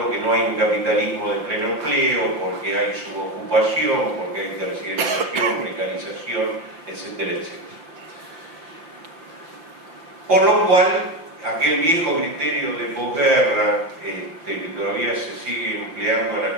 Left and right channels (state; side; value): late; left; 5.8 ms